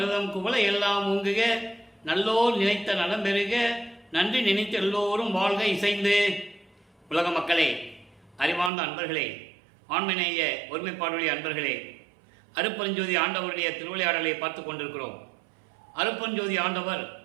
குவளை எல்லாம் ஊங்குக, நல்லோர் நினைத்த நலம் பெறுக, நன்றி நினைத்த எல்லோரும் வாழ்க இசைந்து. உலக மக்களே, அறிவார்ந்த அன்பர்களே, ஆண்மநேய ஒருமைப்பாடுடைய அன்பர்களே, அருட்பெருஞ்சோதி ஆண்டவருடைய திருவிளையாடலை பார்த்து கொண்டிருக்கிறோம். அருட்பெருஞ்சோதி ஆண்டவர்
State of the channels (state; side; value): drops out; left; at 8.7 s